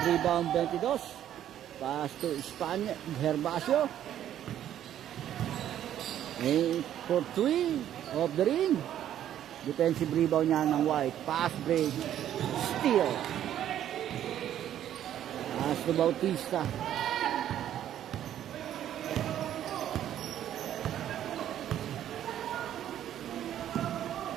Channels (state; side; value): quieter; left; 11.1 dB